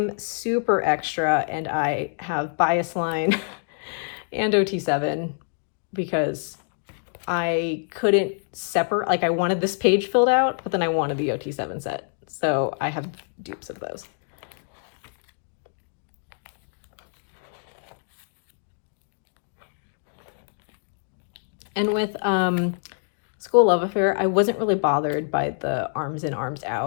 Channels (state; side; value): silent; right; digital silence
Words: super extra, and I have Bias Line and OT7 because I couldn't separate, like I wanted this page filled out, but then I wanted the OT7 set. So I have dupes of those. And with School Love Affair, I wasn't really bothered by the arms in, arms